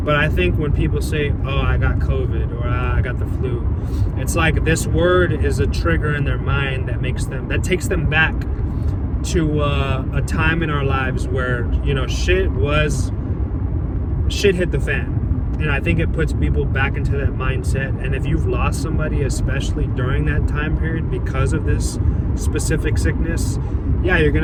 But I think when people say, oh, I got COVID, or I got the flu, it's like this word is a trigger in their mind that takes them back to a time in our lives where, you know, shit hit the fan. And I think it puts people back into that mindset. And if you've lost somebody, especially during that time period, because of this specific sickness, yeah, you're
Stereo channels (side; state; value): both; identical; correlation 1.00